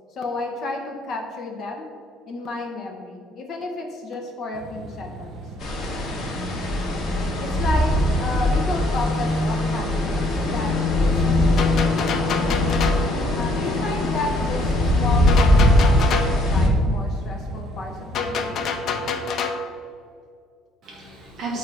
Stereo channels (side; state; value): both; normal; correlation 0.66